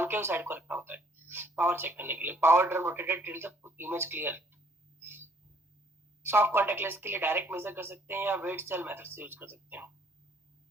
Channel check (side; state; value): both; normal; correlation 0.62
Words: साइड को रखना होता है पावर चेक करने के लिए। Power drum rotated till the image clear. Soft contact lens के लिए डायरेक्ट मेजर कर सकते हैं या वेट सेल मेथड से यूज कर सकते हैं।